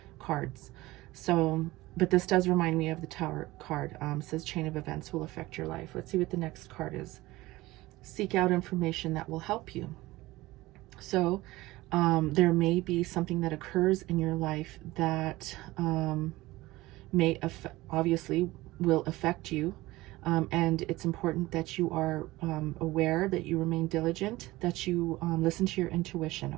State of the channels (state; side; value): quieter; left; 19.0 dB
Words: cards. So, but this does remind me of the Tower card. It says chain of events will affect your life. Let's see what the next card is. Seek out information that will help you. So there may be something that occurs in your life that obviously will affect you. And it's important that you are aware, that you remain diligent, that you listen to your intuition,